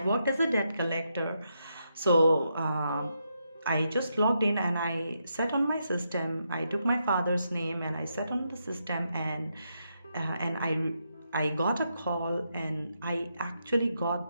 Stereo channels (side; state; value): both; inverted; correlation -0.82